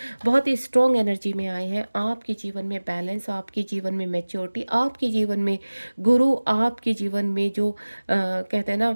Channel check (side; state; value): both; inverted; correlation -1.00